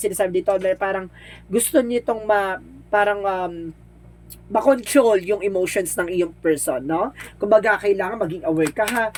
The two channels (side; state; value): both; identical; correlation 1.00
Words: sinasabi dito na parang gusto nitong makontrol yung emotions ng iyong person, no? Kumbaga, kailangan maging aware ka, ha?